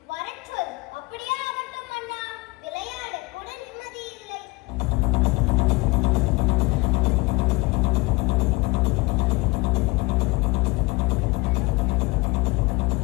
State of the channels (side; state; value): right; quieter; 23.8 dB